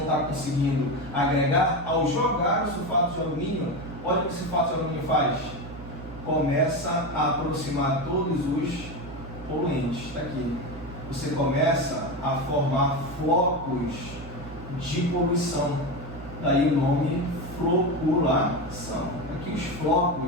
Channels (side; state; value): right; noise; hum, 13 dB below the sound